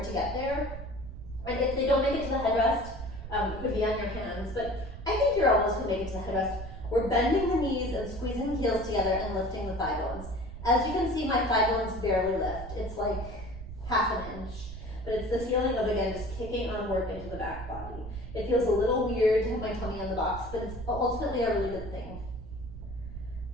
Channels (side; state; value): right; noise; rumble, 11 dB below the sound